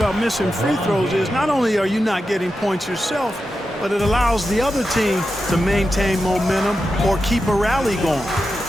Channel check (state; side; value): normal; both; correlation 0.90